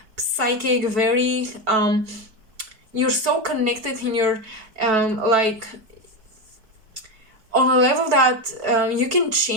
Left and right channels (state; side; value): late; left; 4.6 ms